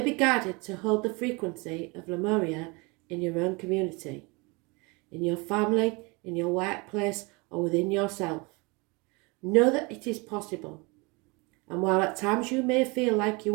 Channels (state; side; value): quieter; left; 27.9 dB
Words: be guided to hold the frequency of Lemuria in your own community, in your family, in your workplace, or within yourself. Know that it is possible, and while at times you may feel like